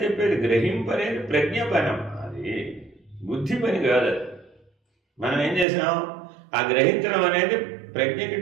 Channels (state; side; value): drops out; left; at 5.7 s